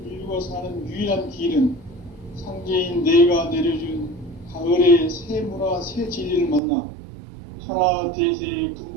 인류가 사는 유일한 길은 상제인 내가 내려준 가을의 새 문화, 새 진리를 만나 천하대세의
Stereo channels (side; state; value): left; drops out; at 6.6 s